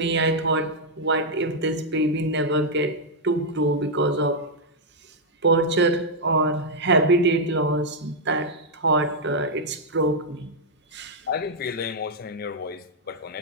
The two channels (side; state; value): both; normal; correlation -0.04